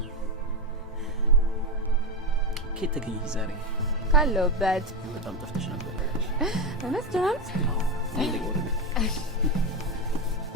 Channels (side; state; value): both; normal; correlation 0.13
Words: ኬት ተገኝ ዛሬ ካለውበት በጣም ጠፍተሽ ነበር። እውነት ጀናል? አይ ለጎረ